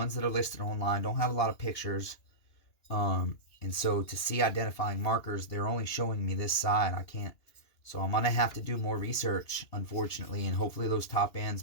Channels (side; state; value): right; late; 2.9 ms